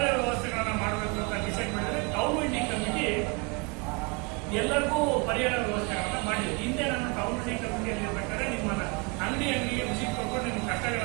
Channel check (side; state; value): left; quieter; 31.0 dB